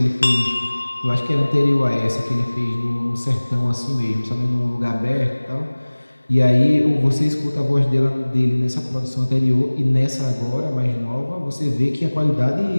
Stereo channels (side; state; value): both; inverted; correlation -1.00